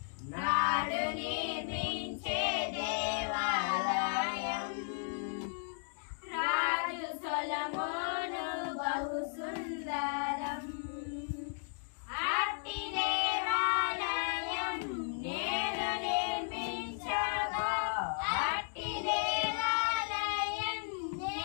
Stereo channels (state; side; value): silent; right; digital silence